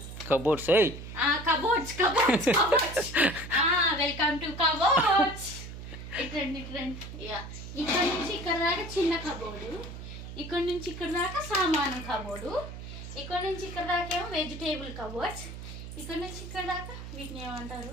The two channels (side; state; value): right; noise; hum, 10 dB below the sound